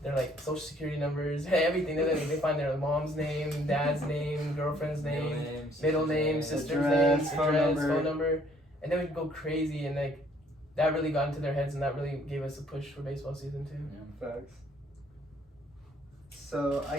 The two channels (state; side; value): normal; both; correlation 0.63